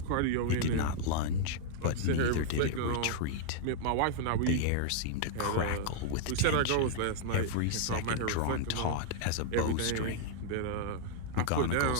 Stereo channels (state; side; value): different; both; correlation -0.01